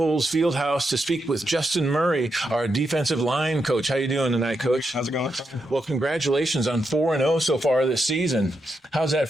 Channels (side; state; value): both; normal; correlation 0.84